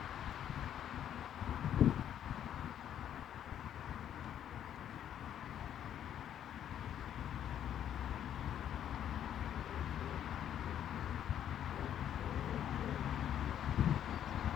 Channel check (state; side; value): quieter; right; 10.1 dB